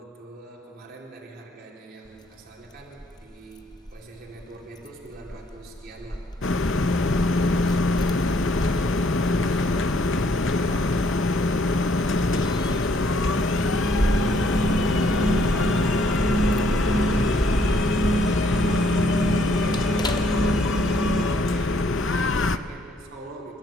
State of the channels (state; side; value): normal; both; correlation 0.67